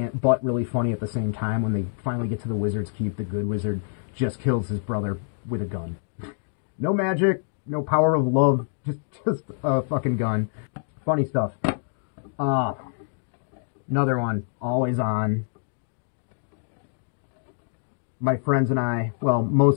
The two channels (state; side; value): silent; right; digital silence